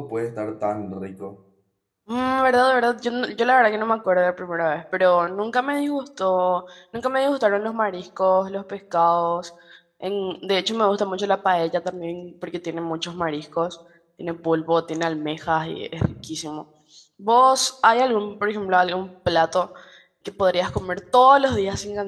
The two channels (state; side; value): identical; both; correlation 1.00